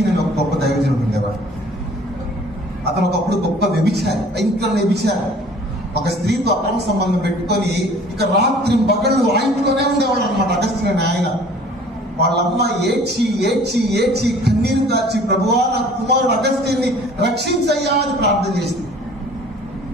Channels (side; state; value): both; normal; correlation 0.50